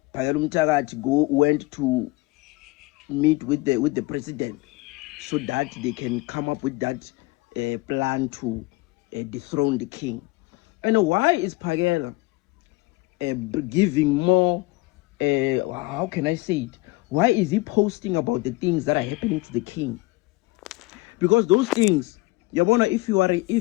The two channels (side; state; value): right; quieter; 21.3 dB